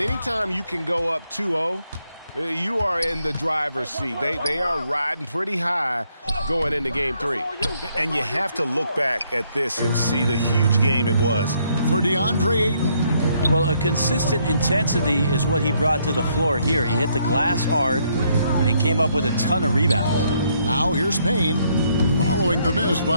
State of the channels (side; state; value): both; inverted; correlation -0.72